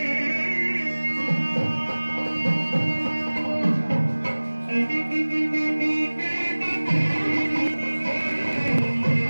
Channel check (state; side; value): inverted; both; correlation -1.00